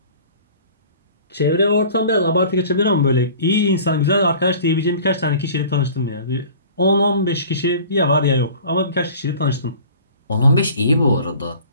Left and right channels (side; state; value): both; inverted; correlation -0.45